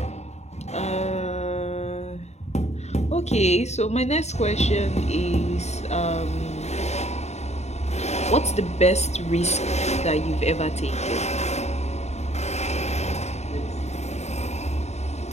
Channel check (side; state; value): right; late; 0.32 ms